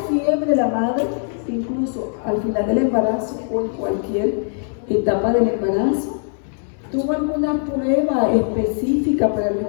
la madre, incluso al final del embarazo o en cualquier etapa del embarazo? ¿Tuvo alguna prueba específica para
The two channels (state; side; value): silent; right; 65 dB below the other